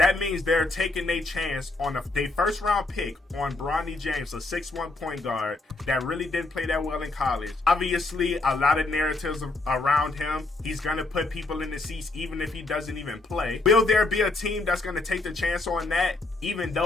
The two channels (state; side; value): quieter; right; 3.1 dB